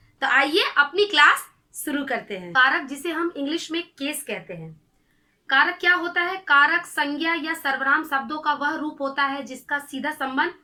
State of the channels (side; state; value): both; identical; correlation 1.00